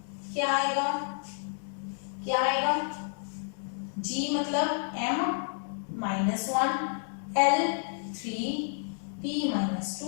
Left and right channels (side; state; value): right; silent; 58 dB below the other